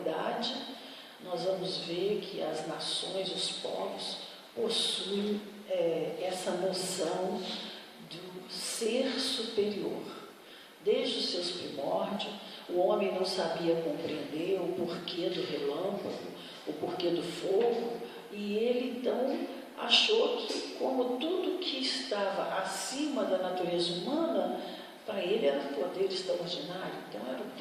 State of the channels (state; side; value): identical; both; correlation 1.00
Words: nós vamos ver que as nações, os povos, possuem essa noção do ser superior. Desde os seus primórdios, o homem não sabia compreender o porquê do relâmpago, o porquê do fogo, e ele então achou que, como tudo que estava acima da natureza humana, para ele era um poder extraordinário. Então era o